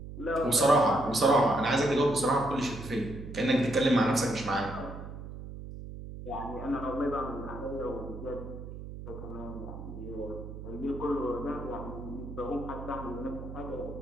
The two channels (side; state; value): right; noise; hum, 10 dB below the sound